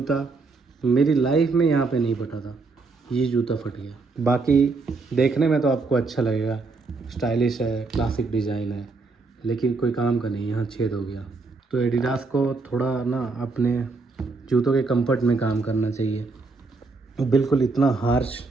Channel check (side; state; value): left; quieter; 4.0 dB